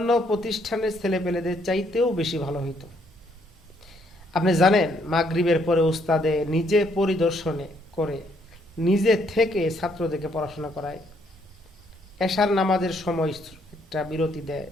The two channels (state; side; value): normal; both; correlation 0.70